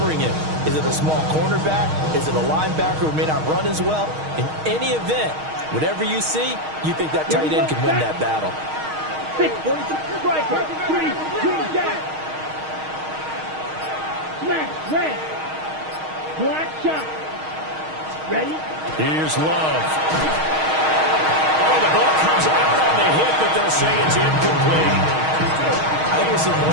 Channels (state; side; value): late; left; 6.4 ms